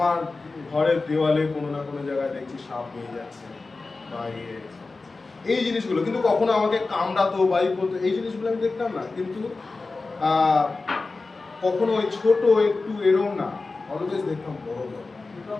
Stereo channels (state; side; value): quieter; right; 3.7 dB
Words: ঘরের দেওয়ালে কোনো না কোনো জায়গায় দেখছি সাপ নিয়ে যাচ্ছে বা এই জিনিসগুলো, কিন্তু কখনো আমাকে কামড়াতো বা করতো, এই জিনিসগুলো আমি দেখতাম না। কিন্তু কখনো ওই ছোট একটু এরম না, অলওয়েজ দেখতাম বড় বড়,